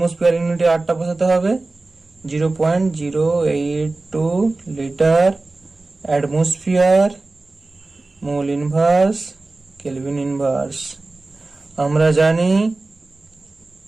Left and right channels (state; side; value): quieter; left; 3.3 dB